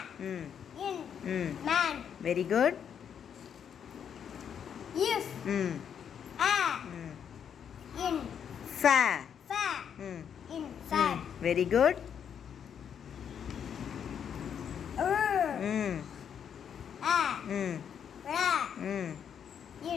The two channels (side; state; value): right; quieter; 8.1 dB